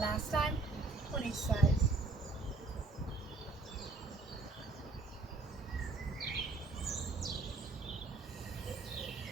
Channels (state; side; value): quieter; left; 3.8 dB